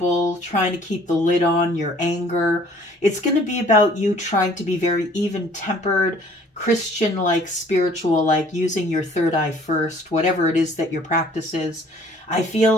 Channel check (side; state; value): both; normal; correlation 0.55